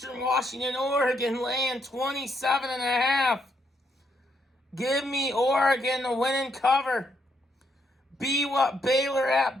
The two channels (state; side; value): normal; both; correlation 0.76